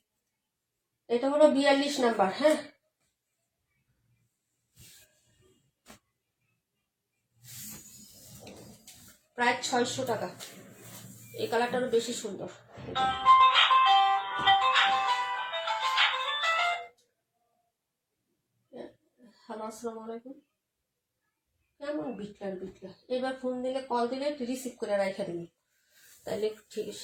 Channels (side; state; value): both; identical; correlation 1.00